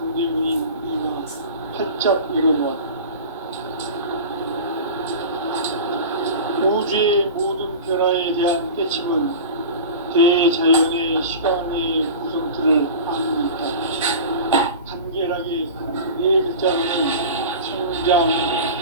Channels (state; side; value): inverted; both; correlation -0.33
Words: 이가 활짝 열어놓았다. 우주의 모든 변화에 대한 깨침은 대자연의 시간의 구성틀을 아는 듯한 간결하게 네 글자로는 성장,